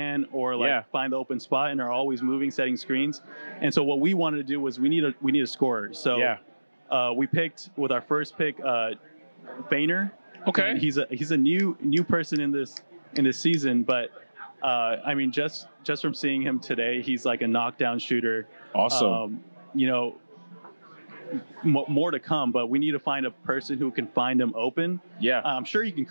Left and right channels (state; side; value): inverted; both; correlation -1.00